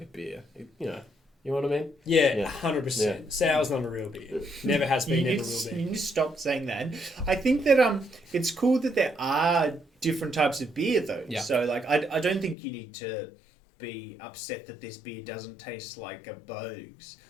a beer, you know what I mean? Yeah, Yeah. 100%. Yeah. Sour's not a real beer. Never has been, You never need, will you be. need to stop saying that. I think that it's cool that there are different types of beer though. Yeah. So I don't think you need to be upset that this beer doesn't taste like a Bogues.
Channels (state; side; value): drops out; right; at 12.6 s